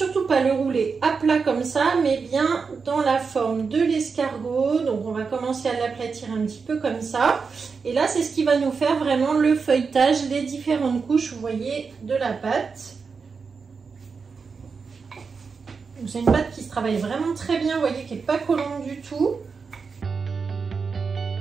pas le rouler à plat comme ça, mais bien dans la forme de l'escargot. Donc on va commencer à l'aplatir un petit peu comme ça. Et là c'est ce qui va nous faire vraiment le feuilletage, les différentes couches, vous voyez, de la pâte. C'est une pâte qui se travaille vraiment très bien, vous voyez, qui n'est pas collante du tout.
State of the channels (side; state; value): left; quieter; 5.2 dB